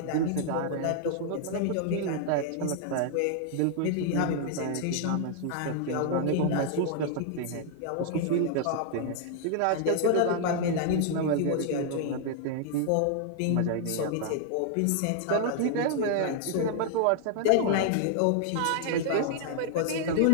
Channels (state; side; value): different; both; correlation -0.01